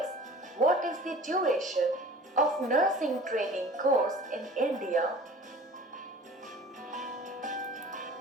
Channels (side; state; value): both; normal; correlation 0.45